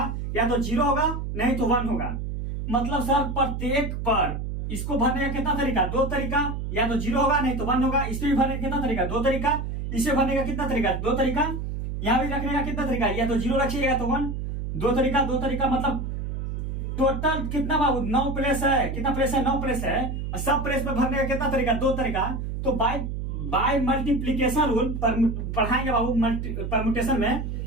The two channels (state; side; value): noise; right; hum, 4 dB below the sound